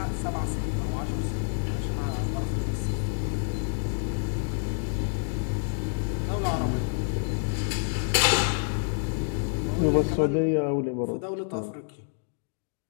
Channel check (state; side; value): silent; right; 59 dB below the other